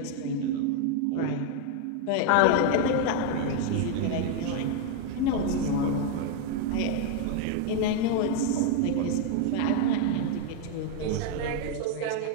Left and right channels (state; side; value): different; both; correlation 0.00